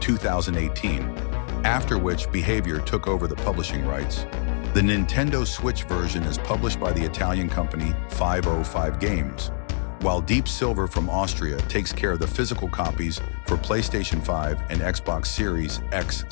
after which Behaviour took over the publishing rights. The Nintendo Switch version is published by the Italian company 505 Games, while Deep Silver from Austria takes care of the physical copies for PlayStation 5 and Xbox Series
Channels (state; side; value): silent; right; digital silence